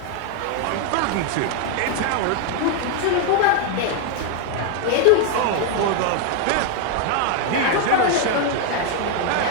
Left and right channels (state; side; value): different; both; correlation 0.01